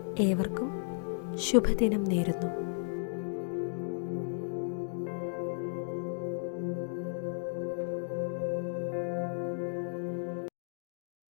ഏവർക്കും ശുഭദിനം നേരുന്നു.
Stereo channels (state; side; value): silent; right; digital silence